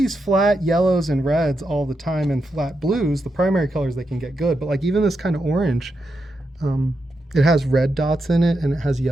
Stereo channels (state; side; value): normal; both; correlation 0.85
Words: flat yellows and reds all the time and flat blues, the primary colors they can get good, but like even this kind of orange, It has red dots in it and it has